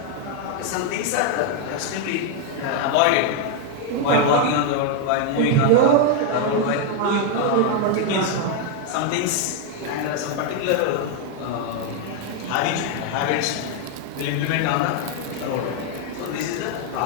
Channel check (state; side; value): different; both; correlation 0.01